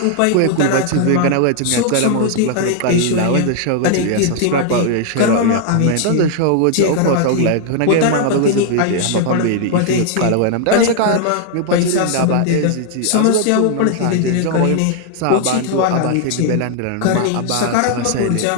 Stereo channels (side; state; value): both; different; correlation 0.00